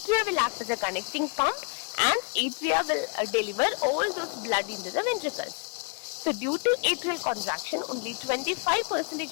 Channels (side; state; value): right; quieter; 39.1 dB